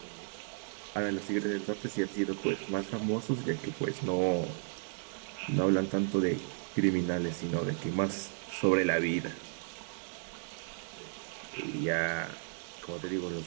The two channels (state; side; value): silent; left; 55 dB below the other